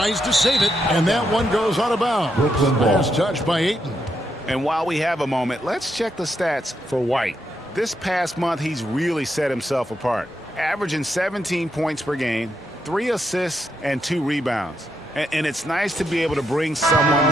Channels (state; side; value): normal; both; correlation 0.80